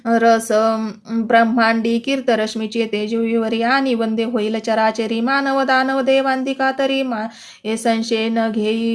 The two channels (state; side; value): identical; both; correlation 1.00